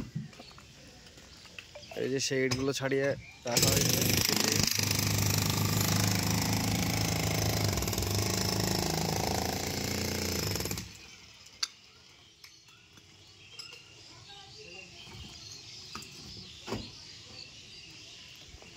এই যে সেই ইটগুলো ছাড়িয়ে রাখা হয়েছে।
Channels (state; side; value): identical; both; correlation 1.00